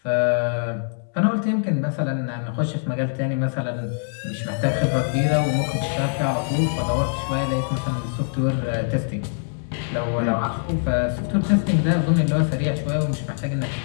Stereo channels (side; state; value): right; silent; 63 dB below the other